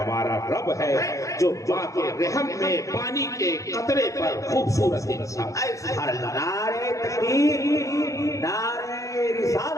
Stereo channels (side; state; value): right; late; 0.16 ms